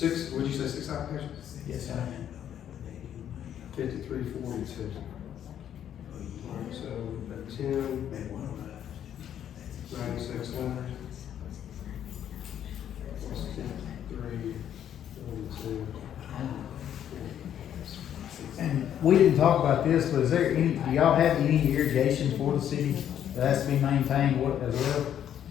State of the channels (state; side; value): quieter; right; 10.0 dB